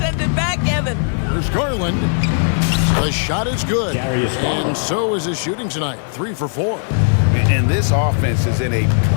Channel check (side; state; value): right; silent; digital silence